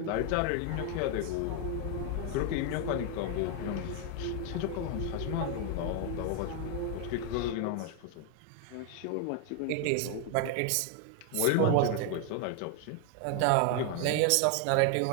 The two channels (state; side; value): different; both; correlation 0.00